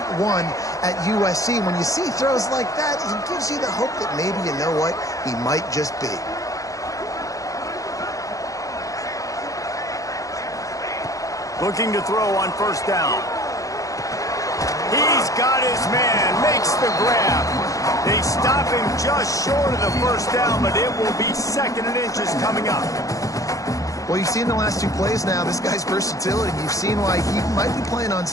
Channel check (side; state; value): right; late; 0.16 ms